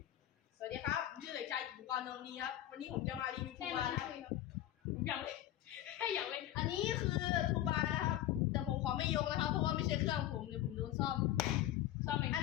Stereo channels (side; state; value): right; quieter; 13.1 dB